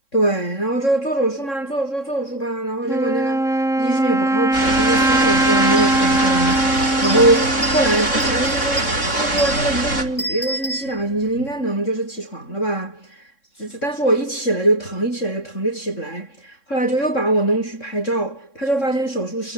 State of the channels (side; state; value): right; late; 3.6 ms